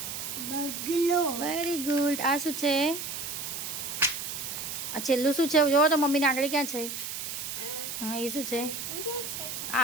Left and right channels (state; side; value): noise; right; hiss, 6 dB below the sound